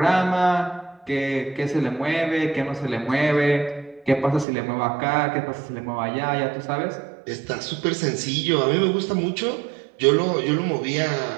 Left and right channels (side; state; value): left; drops out; at 4.5 s